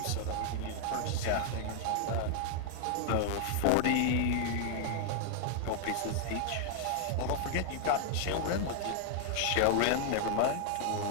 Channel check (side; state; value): both; different; correlation 0.00